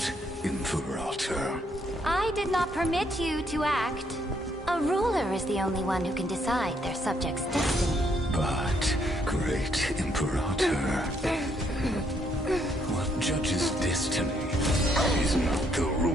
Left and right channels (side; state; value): both; normal; correlation 0.72